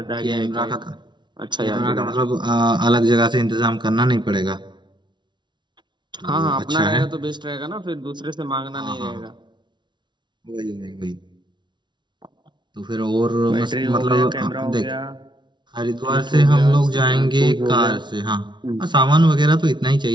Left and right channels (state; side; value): late; left; 0.22 ms